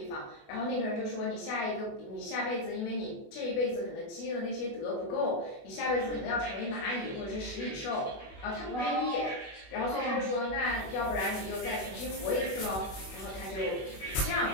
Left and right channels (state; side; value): late; right; 21 ms